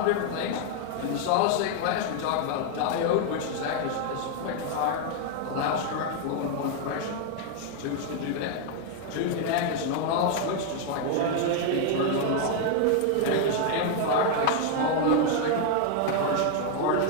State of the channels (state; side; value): different; both; correlation 0.00